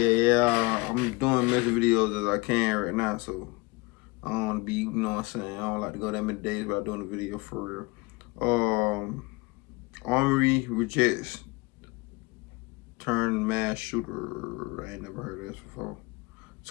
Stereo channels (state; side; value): quieter; right; 25.3 dB